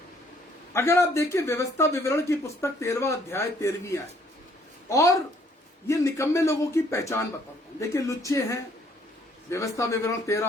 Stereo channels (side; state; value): both; normal; correlation 0.63